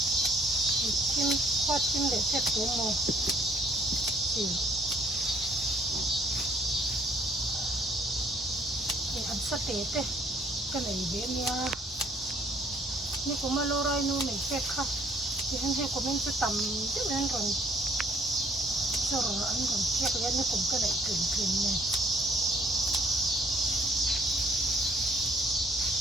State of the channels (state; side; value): normal; both; correlation 0.62